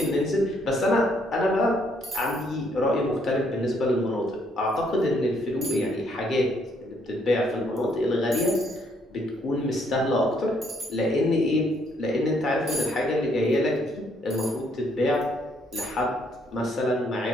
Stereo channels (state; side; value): normal; both; correlation 0.69